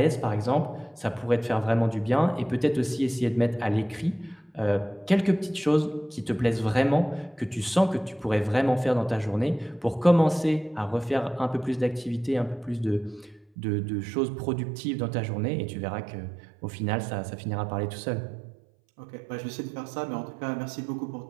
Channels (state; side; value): drops out; left; at 13.5 s